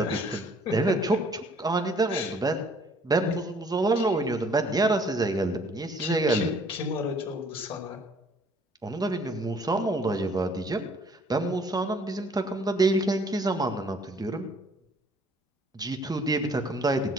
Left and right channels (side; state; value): both; normal; correlation 0.59